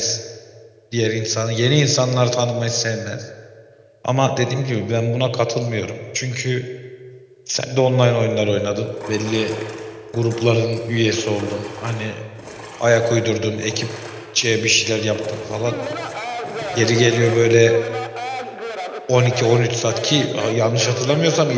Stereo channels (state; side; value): identical; both; correlation 1.00